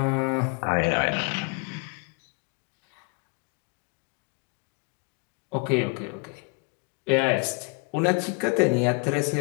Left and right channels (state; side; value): quieter; right; 33.0 dB